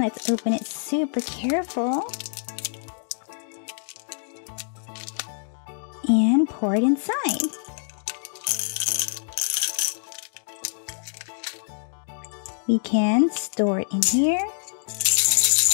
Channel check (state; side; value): silent; right; digital silence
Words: let's open it super careful. and pour it inside. We can store it in here